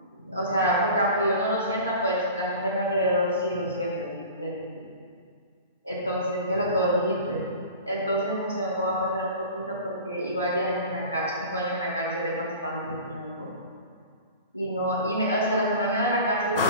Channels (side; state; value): both; inverted; correlation -0.38